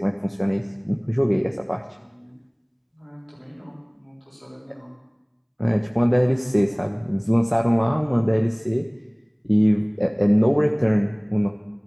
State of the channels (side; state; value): both; identical; correlation 1.00